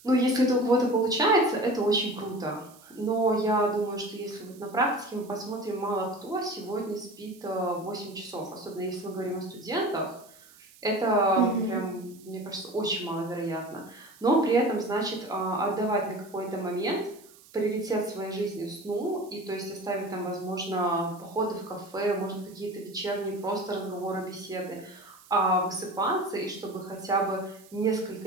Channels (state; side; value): noise; right; hiss, 24 dB below the sound